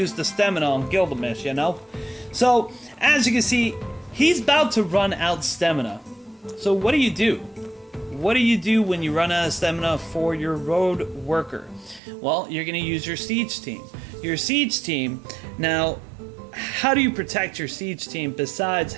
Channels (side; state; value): left; drops out; at 12.0 s